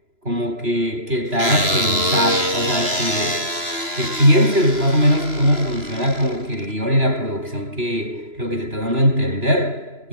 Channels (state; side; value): late; left; 3.0 ms